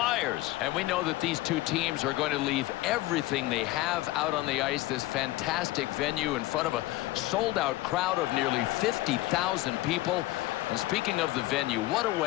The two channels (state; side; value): quieter; right; 18.1 dB